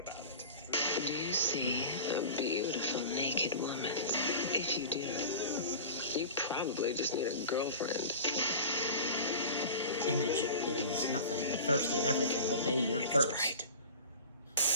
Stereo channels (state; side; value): inverted; both; correlation -0.36